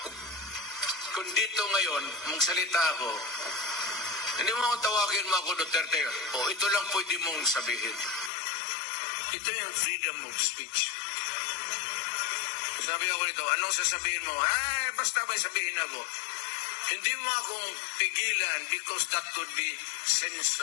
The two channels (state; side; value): drops out; right; at 8.3 s